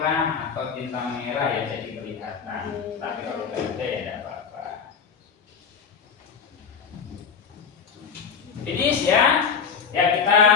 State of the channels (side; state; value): right; quieter; 6.4 dB